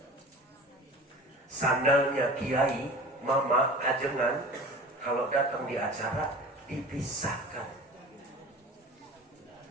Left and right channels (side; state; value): both; normal; correlation 0.39